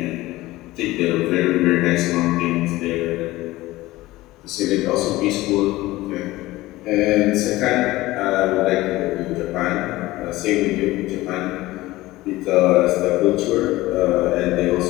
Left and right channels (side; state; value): right; quieter; 18.2 dB